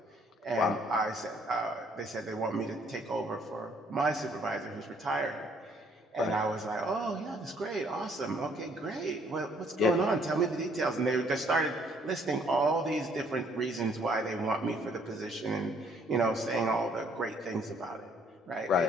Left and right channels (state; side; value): normal; both; correlation 0.64